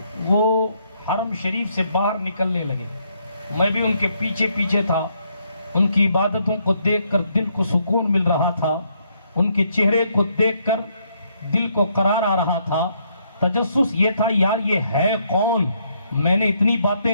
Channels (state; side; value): inverted; both; correlation -0.73